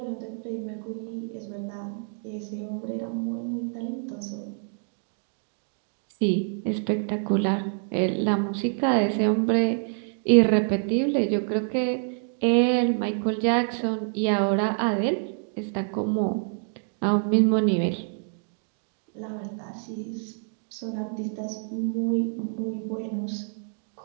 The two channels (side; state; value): left; silent; digital silence